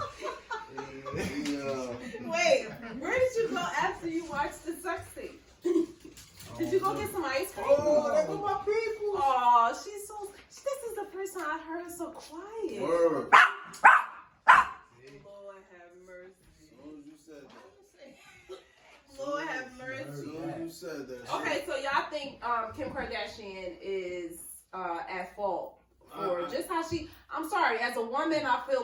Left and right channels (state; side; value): identical; both; correlation 1.00